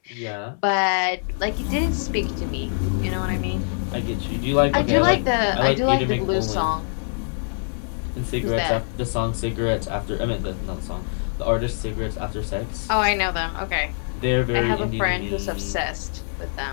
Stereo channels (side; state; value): right; silent; digital silence